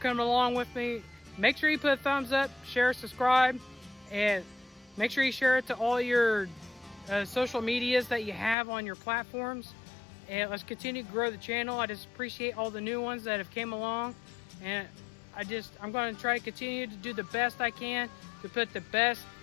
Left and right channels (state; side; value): drops out; right; at 8.6 s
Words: along with me. Make sure you put a thumbs up, share, subscribe, and make sure you share it to all your social medias that you have on your platforms. And let's continue to grow the channel. I just appreciate all the new ones that have came along. And I'm going to try to continue to do the best I can to put the best